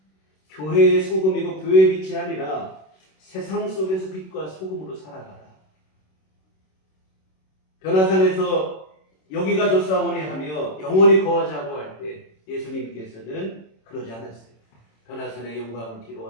교회의 소금이고 교회의 빛이 아니라 세상 속에서 빛과 소금으로 살아가라. 변화산에서 여기가 좋사오니 하며 영원히 거하자고 할 때 예수님께서는 그러지 않았어요. 변화산의 영광을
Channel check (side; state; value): right; late; 26 ms